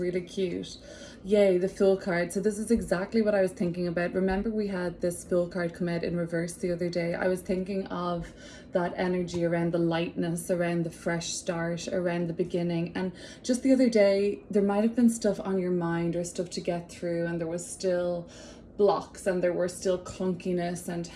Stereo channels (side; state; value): both; identical; correlation 1.00